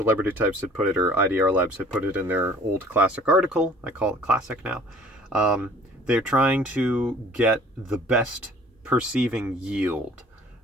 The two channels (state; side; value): normal; both; correlation 0.51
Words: Types had put it, or IDR Labs had put it in their old classic article. I call it classic now. They're trying to get the best perceiving yield